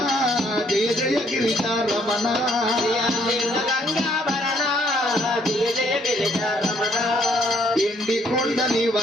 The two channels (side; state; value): both; normal; correlation 0.67